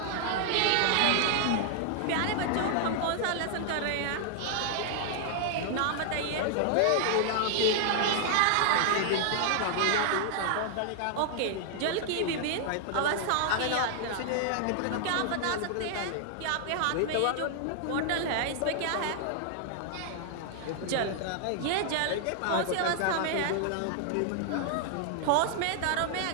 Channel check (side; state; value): both; different; correlation 0.00